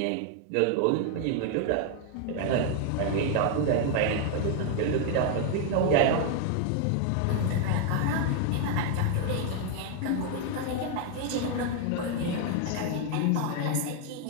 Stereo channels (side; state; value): both; different; correlation 0.00